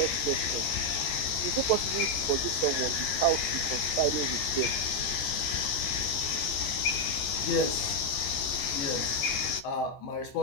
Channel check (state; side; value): late; right; 14 ms